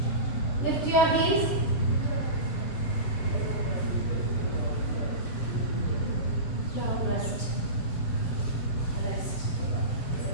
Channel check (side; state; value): right; late; 7.3 ms